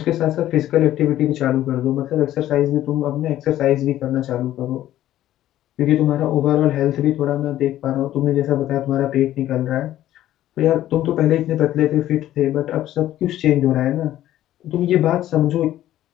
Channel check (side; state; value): right; quieter; 13.3 dB